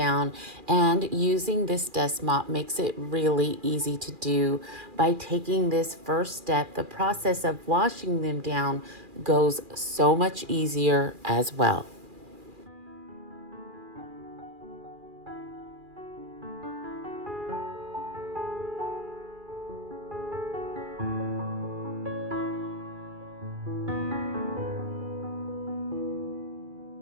and using this dust mop makes it really easy to do. By taking this first step, the process of washing them down goes so much easier as well.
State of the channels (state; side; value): late; left; 2.4 ms